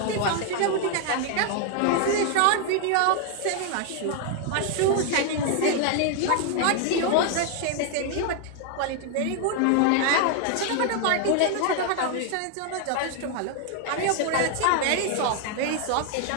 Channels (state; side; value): different; both; correlation 0.00